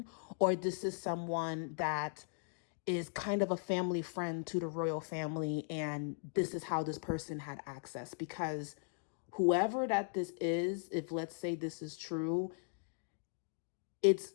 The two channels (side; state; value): right; silent; digital silence